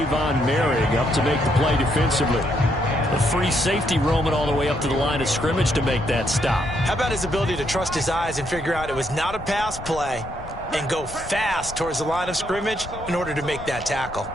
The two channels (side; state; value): left; noise; rumble, 13 dB below the sound